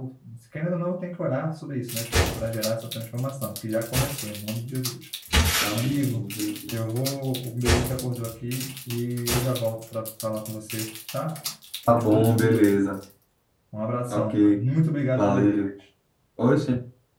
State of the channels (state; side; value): identical; both; correlation 1.00